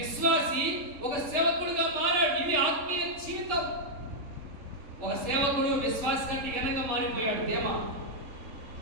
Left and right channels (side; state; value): left; late; 3.4 ms